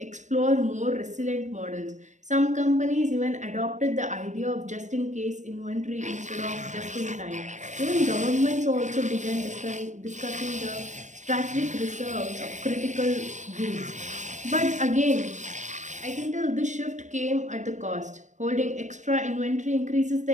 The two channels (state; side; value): late; left; 0.35 ms